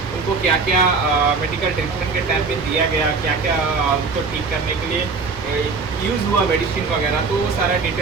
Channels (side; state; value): left; quieter; 4.5 dB